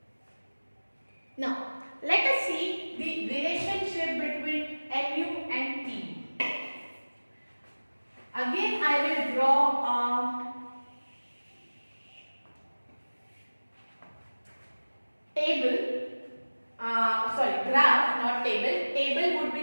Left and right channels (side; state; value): both; inverted; correlation -1.00